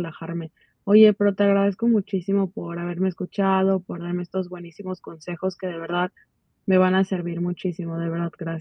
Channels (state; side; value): identical; both; correlation 1.00